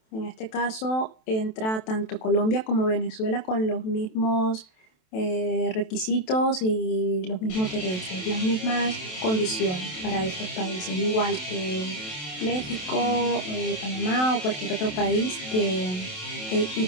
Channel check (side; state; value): right; late; 27 ms